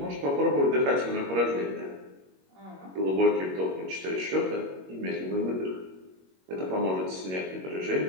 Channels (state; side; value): late; left; 21 ms